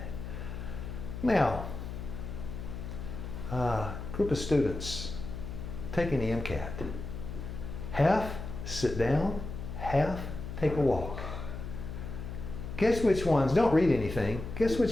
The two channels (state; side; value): noise; left; hum, 8 dB below the sound